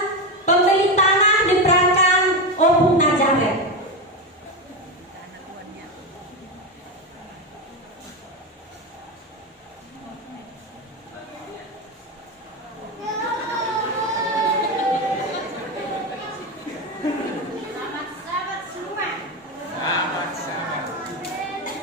pembeli tanah diperankan Opung Nazaret.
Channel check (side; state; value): both; normal; correlation 0.14